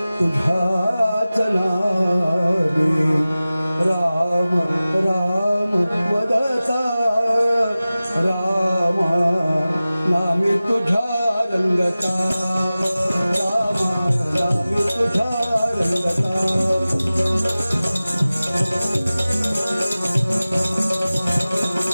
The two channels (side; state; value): both; inverted; correlation -0.97